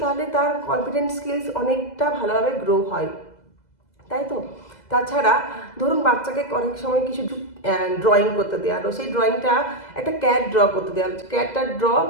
তাহলে তার কনফিডেন্স স্কিলস অনেকটা ভালোভাবে গ্রো হয়, তাই তো? তাছাড়া ধরুন বাচ্চাকে অনেক সময় কিছু ড্রয়িং করতে দেওয়া হলো, সেই ড্রয়িংটা একটা ক্যাট ড্র করতে দেওয়া হলো, ক্যাটটার ড্র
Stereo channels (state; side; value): late; right; 2.0 ms